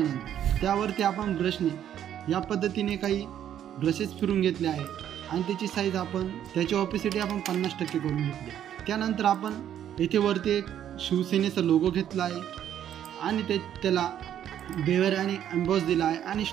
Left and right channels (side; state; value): left; quieter; 10.4 dB